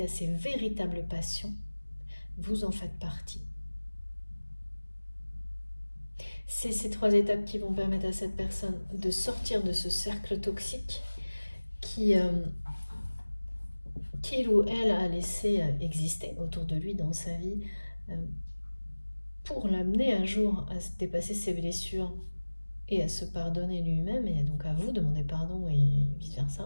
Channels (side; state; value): both; inverted; correlation -1.00